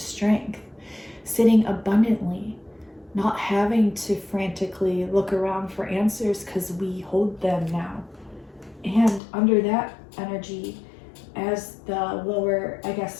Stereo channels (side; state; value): right; drops out; at 9.2 s